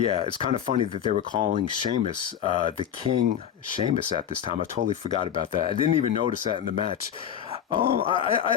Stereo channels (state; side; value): quieter; right; 9.4 dB